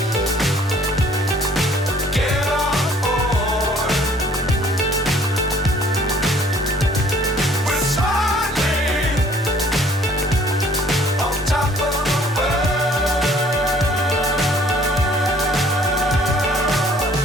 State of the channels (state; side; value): normal; both; correlation 0.57